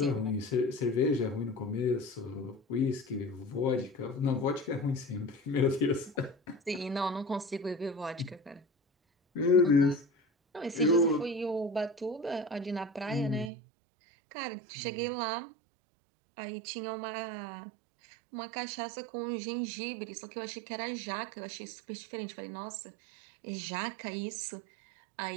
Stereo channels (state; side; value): drops out; left; at 13.5 s